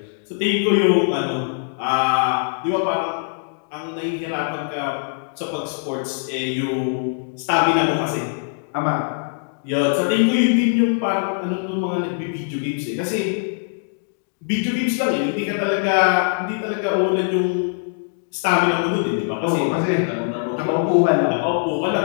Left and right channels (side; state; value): right; silent; digital silence